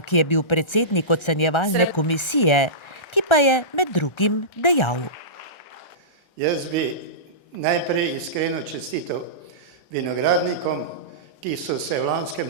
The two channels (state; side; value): late; right; 1.3 ms